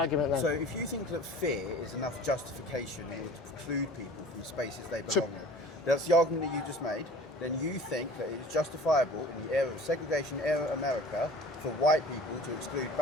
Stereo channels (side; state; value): both; normal; correlation 0.44